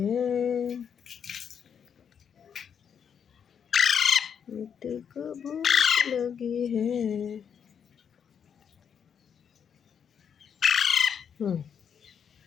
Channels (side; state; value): right; quieter; 7.5 dB